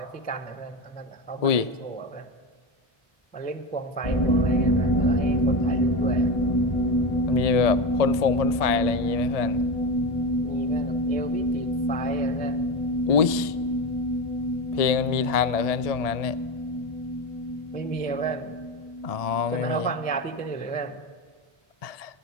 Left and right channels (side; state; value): right; late; 1.7 ms